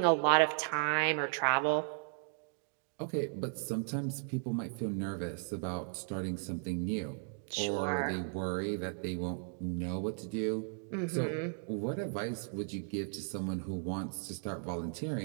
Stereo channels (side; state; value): left; silent; 54 dB below the other